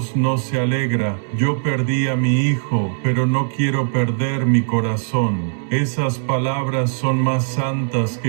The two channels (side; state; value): left; silent; digital silence